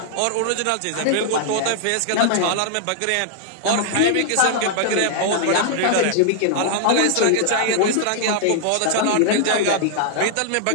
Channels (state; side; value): different; both; correlation -0.01